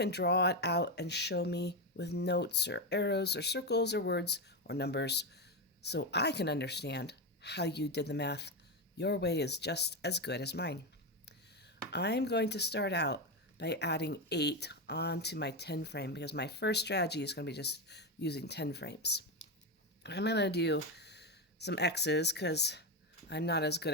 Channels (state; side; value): normal; both; correlation 0.11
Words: draw it out and show me with notes or arrows or circles or words or numbers so I can understand how you did the math. Your way is just as good as mine. I'm going to start out by adding 8 onto my 10 frame because my first strategy is going to be just using 10 frames. I'm going to do some X's because I'm not as good